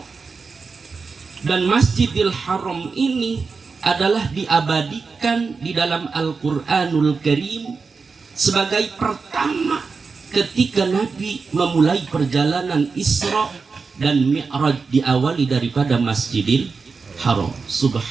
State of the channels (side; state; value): left; quieter; 4.8 dB